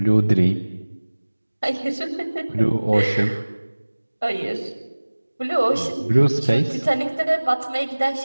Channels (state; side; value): inverted; both; correlation -1.00